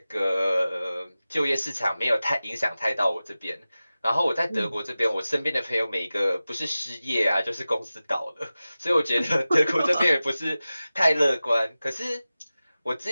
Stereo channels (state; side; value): inverted; both; correlation -0.96